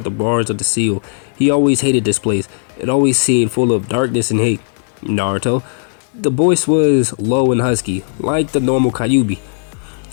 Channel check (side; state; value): right; silent; digital silence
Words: the bars of the seal. He always hated this place. It always seemed full of darkness and hate. "Naruto?" The voice was low and husky, like the normal Kyuubi.